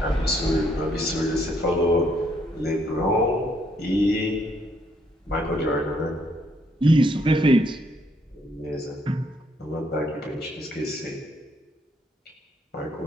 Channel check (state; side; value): normal; both; correlation 0.70